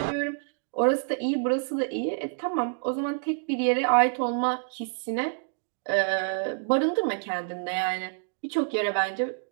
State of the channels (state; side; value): silent; left; digital silence